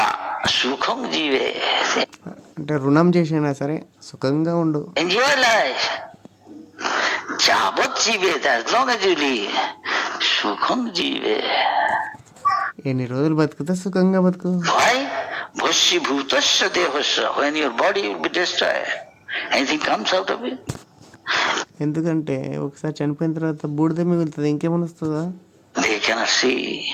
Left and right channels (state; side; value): identical; both; correlation 1.00